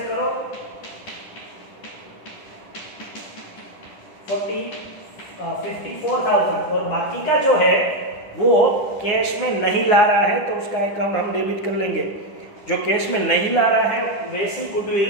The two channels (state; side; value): late; right; 9.6 ms